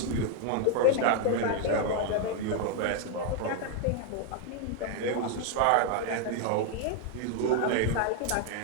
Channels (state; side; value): different; both; correlation 0.01